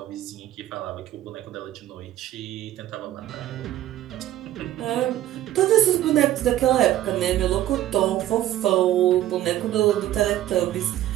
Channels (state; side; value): quieter; left; 13.4 dB